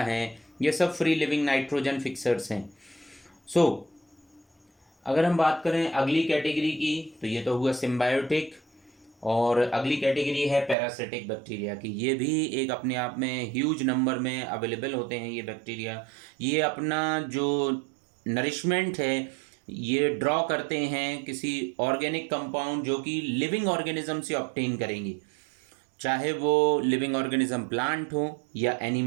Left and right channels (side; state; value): left; drops out; at 10.8 s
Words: ये सब फ्री लिविंग नाइट्रोजन फिक्सर्स हैं। सो अगर हम बात करें अगली कैटेगरी की तो ये तो हुआ सिम्बायोटिक, और अगली कैटेगरी है पैरासिटिक बैक्टीरिया की। ये भी एक अपने आप में ह्यूज नंबर में अवेलेबल होते हैं ये बैक्टीरिया। ये अपना जो नरिशमेंट है ये ड्रॉ करते हैं किसी ऑर्गेनिक कंपाउंड जो कि लिविंग ऑर्गेनिज्म से ऑब्टेन करेंगे, चाहे वो लिविंग ऑर्गेनिज्म प्लांट हो या